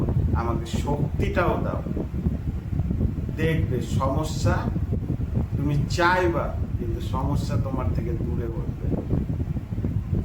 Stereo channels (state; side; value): identical; both; correlation 1.00